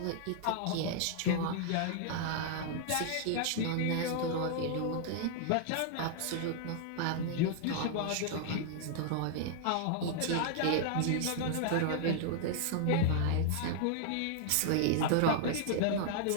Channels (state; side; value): different; both; correlation -0.01